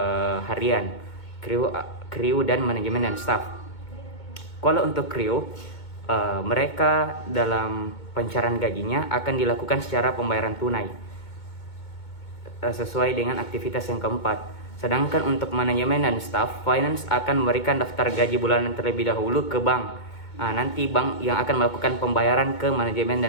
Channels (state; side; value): late; right; 2.2 ms